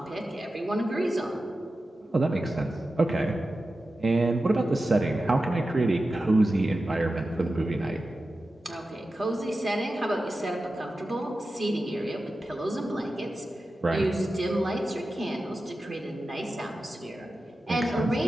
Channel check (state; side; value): normal; both; correlation 0.93